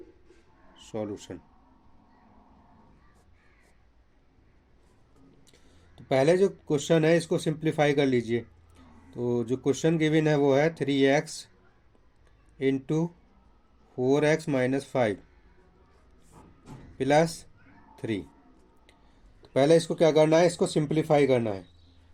सॉल्यूशन। तो पहले जो क्वेश्चन है इसको सिंप्लीफाई कर लीजिए। तो जो क्वेश्चन गिवन है वो है 3x into 4x minus 5 plus 3। तो पहले इसको क्या करना है, इसको सिंप्लीफाई करना है।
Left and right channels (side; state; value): both; identical; correlation 1.00